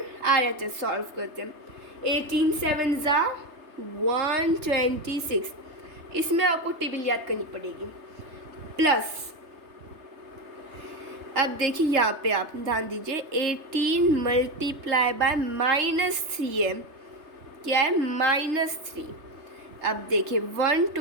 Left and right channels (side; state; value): left; late; 3.3 ms